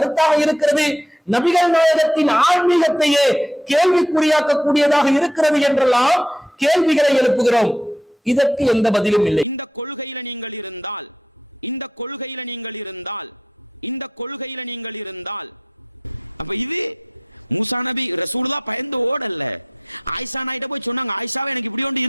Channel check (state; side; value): normal; both; correlation 0.74